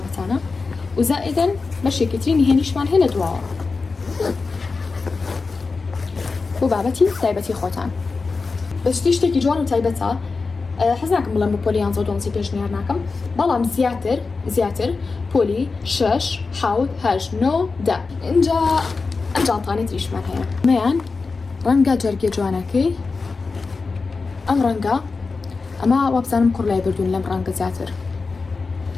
و زائیدەن بەشێکی تری نهێنیشمان هەیە لە دواوە بۆ بابەتی تایبەتی خۆتان بەشتی شتێکی جوان و تایبەتە حەز ناکەم بڵێم بۆ پۆلی 11 پێشنیار ناکەم بەڵام زیاتر پۆلی 6 7 8 9 10 اینجا ئەم جانتانەی تریشمان هەیە مەیان ڕەنگە جەرگێ جوانەکەی ئەم ڕەنگە ئەمە وابزانم کوڕ لای بردوون لەم ڕەنگە زیاتر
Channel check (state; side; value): quieter; right; 4.3 dB